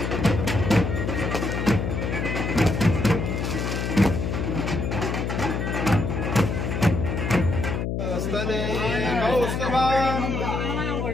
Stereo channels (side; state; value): left; noise; hum, 1 dB below the sound